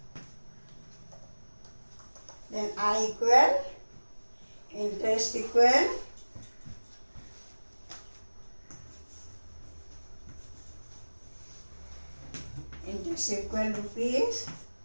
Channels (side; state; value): both; inverted; correlation -1.00